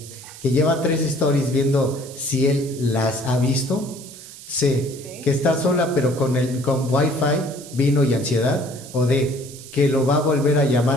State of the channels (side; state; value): right; noise; hiss, 16 dB below the sound